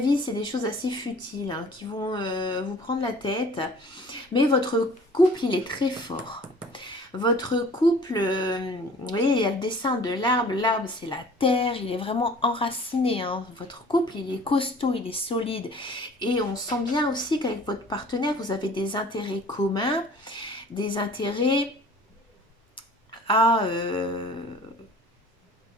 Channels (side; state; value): both; normal; correlation 0.48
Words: c'est des choses assez futiles, hein, qui vont vous prendre la tête. Mais votre couple, il est très fort. Votre couple, vous voyez, il y a le dessin de l'arbre. L'arbre, c'est la terre. Il est vraiment enraciné, hein. Votre couple, il est costaud, il est solide. Et on sent bien aussi qu'avec votre partenaire, vous avez des intérêts communs, des intérêts à,